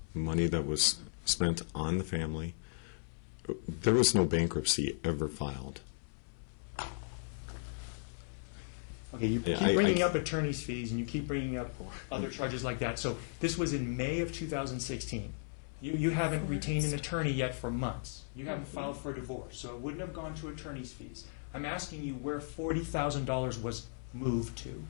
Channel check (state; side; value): silent; right; 54 dB below the other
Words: money that was spent on the family. There was no bankruptcy ever filed. Okay, you Yeah, keep bringing up attorney's fees, and you keep bringing up other charges like that. So this was in May of 2016. You haven't retained an attorney yet for months. You haven't filed for a divorce, so it wouldn't have gone to attorney's fees. I'm asking you where $40,000 was moved to.